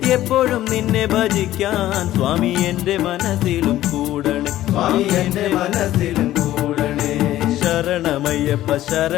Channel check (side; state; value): right; quieter; 14.1 dB